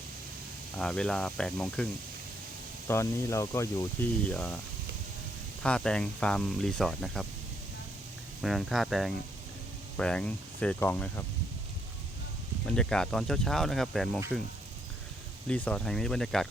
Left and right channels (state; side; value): normal; both; correlation 0.73